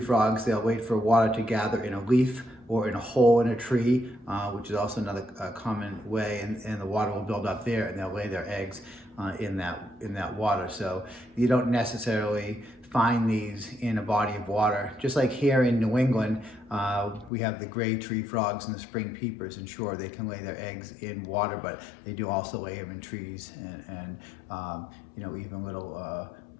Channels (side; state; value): right; drops out; at 17.3 s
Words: frogs, they'll wait for water to gather in a leaf or in a hole in a tree, which is also another common way, and the water will build up there, and they'll lay their eggs in that water. So you don't necessarily find these in a body of water. Just like here in New England, we have the gray tree frogs and the spring peepers, and sure, they can lay their eggs in water, but they do also lay them in trees and even little